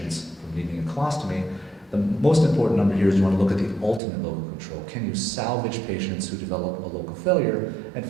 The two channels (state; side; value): drops out; left; at 4.0 s